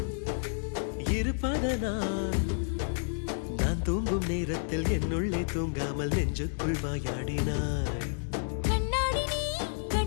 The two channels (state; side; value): silent; right; digital silence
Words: இருப்பதனால் நான் தூங்கும் நேரத்தில் என்னுள்ளே தூங்காமல் நெஞ்சுக்குள் வாயாடினாய். கண்ணாடி நீ